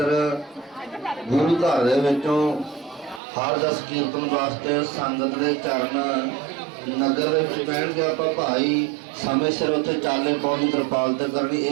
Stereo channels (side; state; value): left; drops out; at 3.2 s